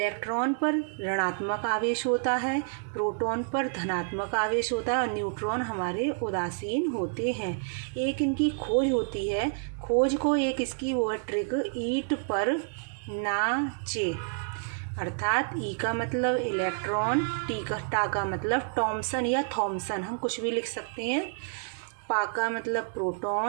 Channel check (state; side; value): silent; left; 59 dB below the other